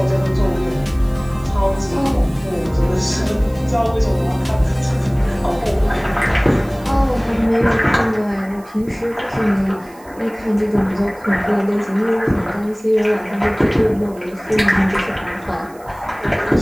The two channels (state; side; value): noise; right; hiss, 26 dB below the sound